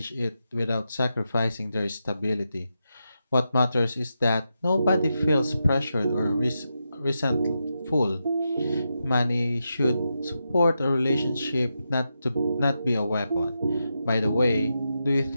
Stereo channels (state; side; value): inverted; both; correlation -0.87